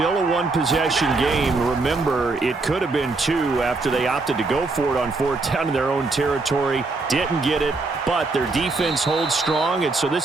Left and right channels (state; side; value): quieter; left; 3.6 dB